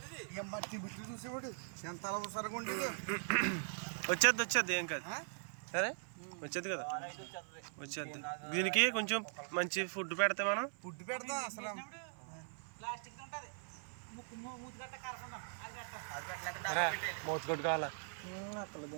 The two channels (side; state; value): left; silent; 51 dB below the other